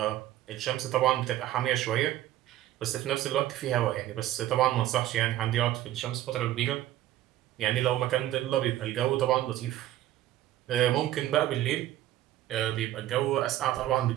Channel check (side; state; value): left; quieter; 13.7 dB